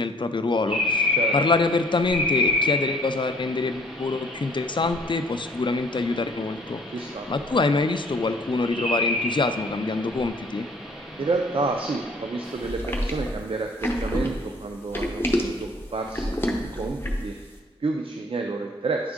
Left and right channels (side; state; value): both; normal; correlation 0.56